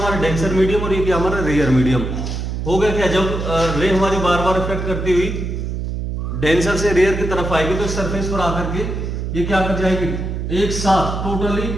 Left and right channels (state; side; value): noise; right; hum, 4 dB below the sound